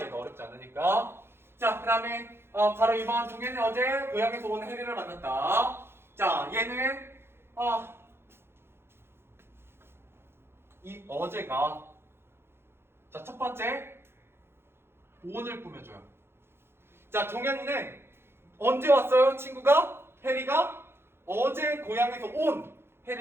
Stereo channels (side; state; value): left; late; 0.11 ms